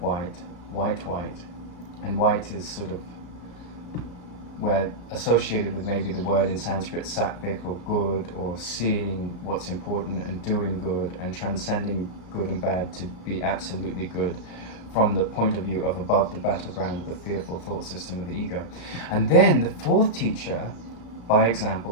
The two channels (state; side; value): late; right; 34 ms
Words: and white is sort of where associated with maybe the word in Sanskrit sattvic, or good, or seeing what's important and doing good and transcending good and bad to be absolutely good, from the point of view of above the battleground of the fearful thought system of the ego. And then the 4th teacher, by example,